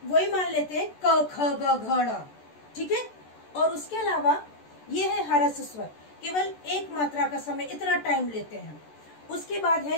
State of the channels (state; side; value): late; right; 14 ms